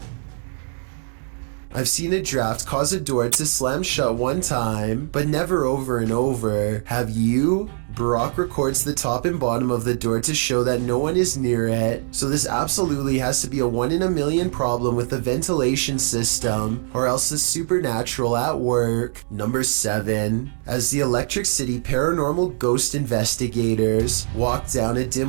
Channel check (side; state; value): left; silent; digital silence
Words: I've seen a draft cause a door to slam shut one time, but never over and over. Have you? Barack records the top and bottom of the door to show that no one is near it, so this absolutely has to be a 1 in a million problem with the ventilation system, or else it's supernatural at work. Number 7. As the Electric City paranormal ghost investigators walk down a